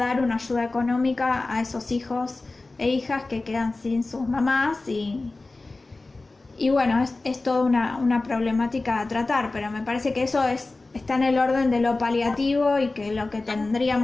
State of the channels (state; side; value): quieter; right; 3.3 dB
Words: una ayuda económica a esos hijos e hijas que quedan sin sus mamás y bueno, es toda una problemática a tratar, pero me parece que eso está en el orden de lo paliativo y que lo que